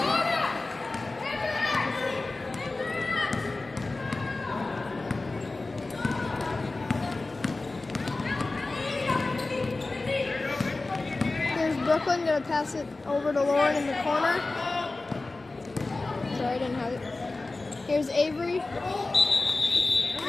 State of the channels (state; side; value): quieter; right; 3.3 dB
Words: Brooklyn gonna pass it over to Lauren in the corner. Sorry, I didn't have it. Here's Avery.